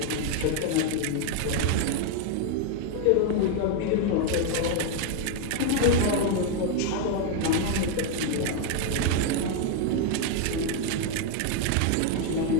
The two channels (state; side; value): different; both; correlation 0.01